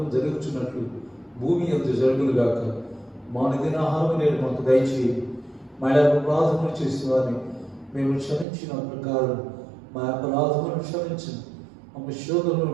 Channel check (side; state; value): left; drops out; at 8.5 s